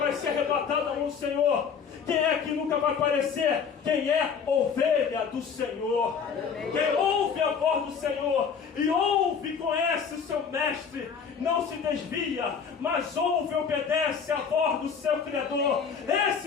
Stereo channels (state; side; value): quieter; right; 6.5 dB